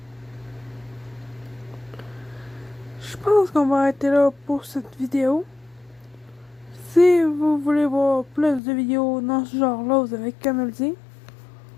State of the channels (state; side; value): drops out; right; at 8.6 s